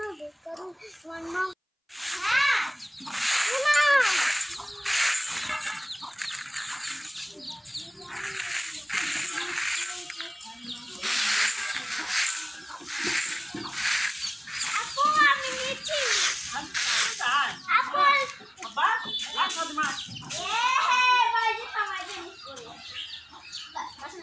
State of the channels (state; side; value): identical; both; correlation 1.00